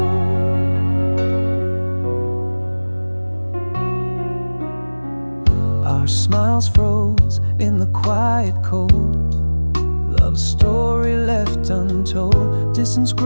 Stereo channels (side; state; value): both; inverted; correlation -1.00